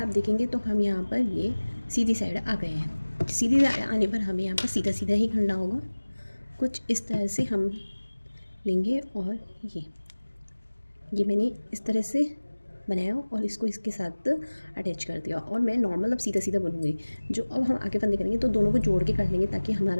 देखेंगे तो हम यहाँ पर ये सीधी साइड आ गए हैं। सीधी साइड आने पर हमें यहाँ पर सीधा सीधा ही करना होगा। कुछ इस तरह से हम लेंगे और ये मैंने इस तरह से बनाया और इसको इसके साथ अटैच कर दिया। और मैं नॉर्मल अब सीधा सीधा बनूँगी। जो अब हम आगे फंदे करेंगे तो दोनों को जोड़ के कर लेंगे, ताकि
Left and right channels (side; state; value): both; inverted; correlation -1.00